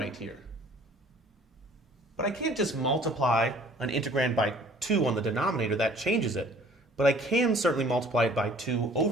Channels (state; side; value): normal; both; correlation 0.53